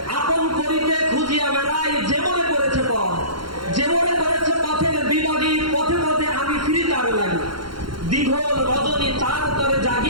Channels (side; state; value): left; late; 0.73 ms